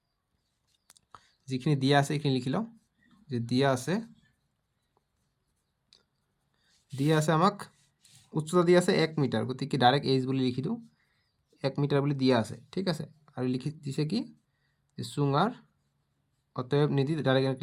যিখিনি দিয়া আছে এইখিনি লিখি লওঁ যে দিয়া আছে আমাক উচ্চতা দিয়া আছে 1 মিটাৰ, গতিকে ডাইৰেক্ট এইচ বুলি লিখি দিওঁ, 1 মিটাৰ বুলি দিয়া আছে, ঠিক আছে। আৰু লিখি দিছে কি যে চুঙাৰ, অতএব নিদি ডাইৰেক্ট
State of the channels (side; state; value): both; identical; correlation 1.00